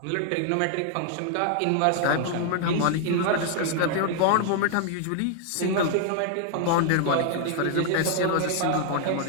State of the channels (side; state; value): both; different; correlation 0.00